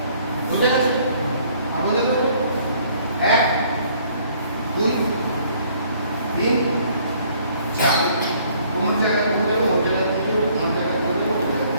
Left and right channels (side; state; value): both; inverted; correlation -0.61